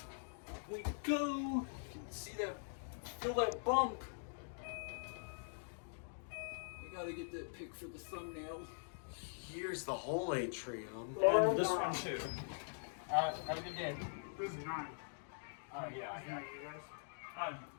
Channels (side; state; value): right; silent; digital silence